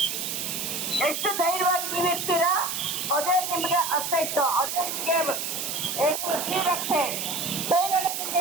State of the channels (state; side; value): noise; right; hiss, 3 dB below the sound